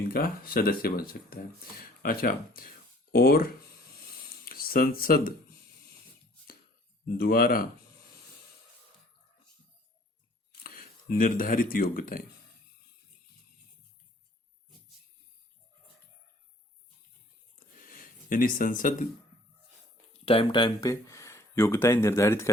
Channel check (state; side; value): normal; both; correlation 0.56